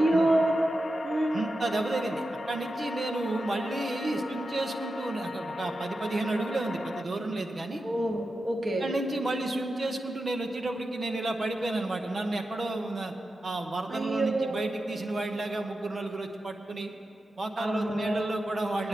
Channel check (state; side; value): normal; both; correlation 0.91